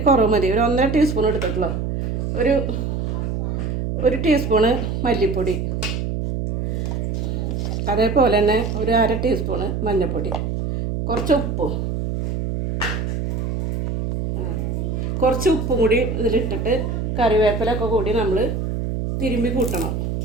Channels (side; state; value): right; noise; hum, 2 dB below the sound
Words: കുറവ് മതി, ഒരു 1.5 ടീസ്പൂൺ എടുത്തിട്ടുള്ളൂ, ഒരു ടീസ്പൂണ് മല്ലിപ്പൊടി, അതേപോലെ തന്നെ ഒരു 1/2 ടീസ്പൂണ് മഞ്ഞൾപ്പൊടി, കുറച്ച് ഉപ്പും കൂടി ഇതിലിട്ടിട്ട് കറിവേപ്പിലൊക്കെ കൂടി നമ്മൾ തിരുമ്പി കൂട്ടണം.